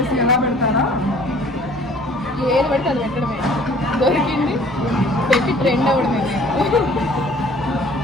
ఎలా పెడతారా? ఏది పడితే అది పెట్టడమే. దొరికింది పెట్టి ట్రెండ్ అవ్వడమే.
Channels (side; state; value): both; normal; correlation 0.53